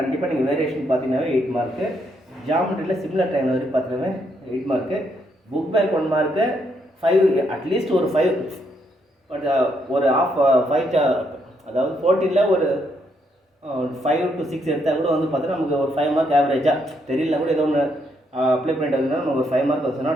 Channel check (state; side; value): normal; both; correlation 0.75